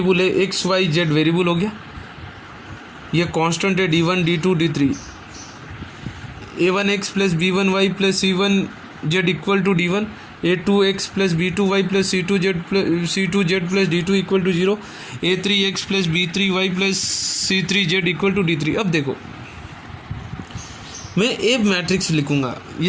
है, x y z वेरिएबल हो गया, ये कांस्टेंट है d1 d2 d3, a1x plus b1y plus c1z equal to d1, a2x plus b2y plus c2z plus d2 equal to 0, a3x plus b3y plus c3z equal to d3। अब देखो, मैं ए matrix लिखूंगा।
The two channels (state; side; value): identical; both; correlation 1.00